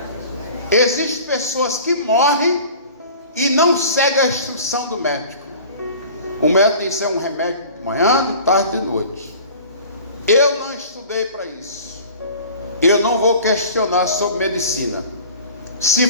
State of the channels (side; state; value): both; inverted; correlation -0.43